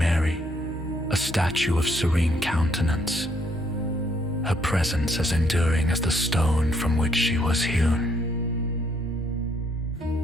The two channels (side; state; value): both; normal; correlation 0.70